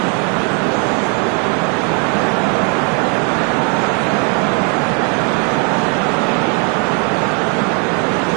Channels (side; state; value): left; quieter; 36.9 dB